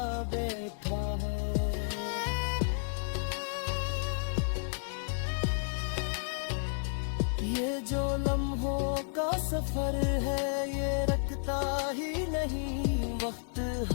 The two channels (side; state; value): right; silent; digital silence